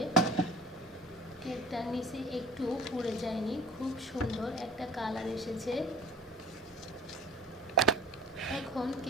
কেকটা নিচে একটু পুড়ে যায়নি, খুব সুন্দর একটা কালার এসেছে। এখন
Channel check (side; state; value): both; normal; correlation 0.44